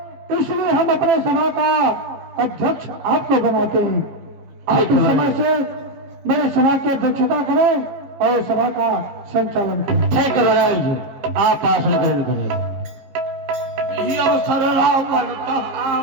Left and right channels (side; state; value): left; late; 15 ms